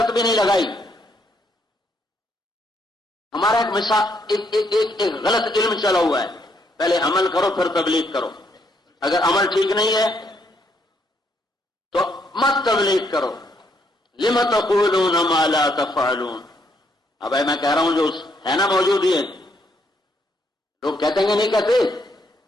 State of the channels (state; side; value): normal; both; correlation 0.73